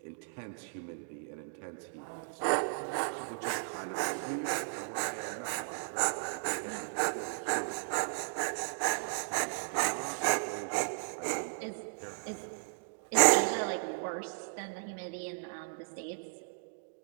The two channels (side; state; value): left; silent; digital silence